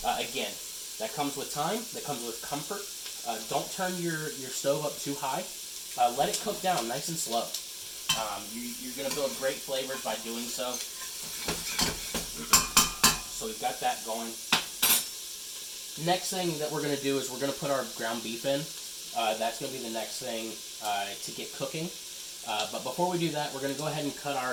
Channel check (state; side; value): identical; both; correlation 1.00